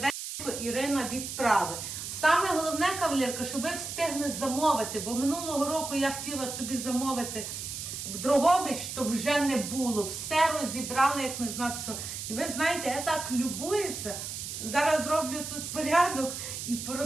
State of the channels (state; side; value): noise; right; hiss, 7 dB below the sound